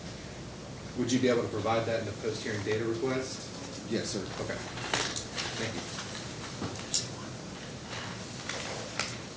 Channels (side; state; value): both; identical; correlation 1.00